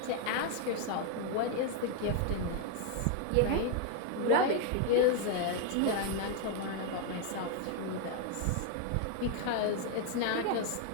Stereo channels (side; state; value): both; different; correlation 0.01